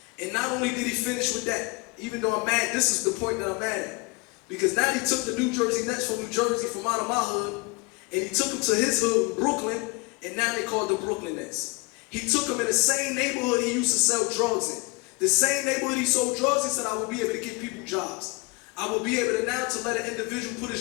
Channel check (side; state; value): right; quieter; 28.0 dB